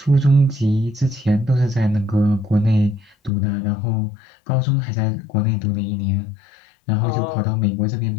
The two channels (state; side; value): drops out; right; at 3.3 s